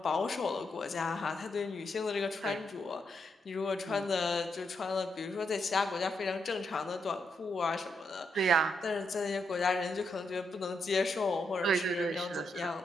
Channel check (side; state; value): both; normal; correlation 0.80